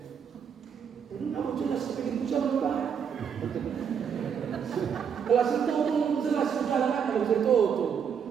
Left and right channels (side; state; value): left; quieter; 7.4 dB